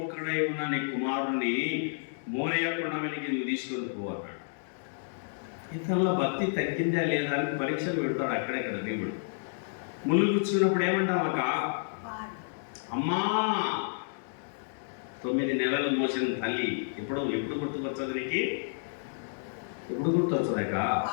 ఉన్న నీ కుమారుణ్ణి మోరియా కొండ మీదకి నువ్వు తీసుకొని పోవన్నాడు. ఇతరుల భక్తి తగ్గిందా లేదా అని పరీక్షలు పెడతాడు అక్కడెక్కడ దేవుడు. ముళ్ళు కూర్చున్నప్పుడు ఏమంటామక్క, అమ్మా 9 నెలలు మోసిన తల్లి ఎప్పుడు గుర్తుకొచ్చదు నీకు? ఎప్పుడు గుర్తొచ్చదాక?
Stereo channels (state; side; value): silent; right; digital silence